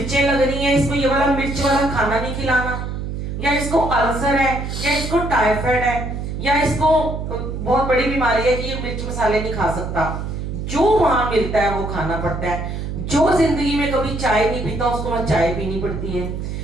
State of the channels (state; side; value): noise; right; hum, 5 dB below the sound